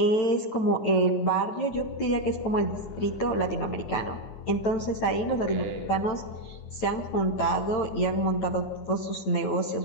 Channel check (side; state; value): right; late; 9.0 ms